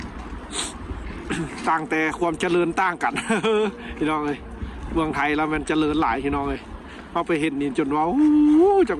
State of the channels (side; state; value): both; identical; correlation 1.00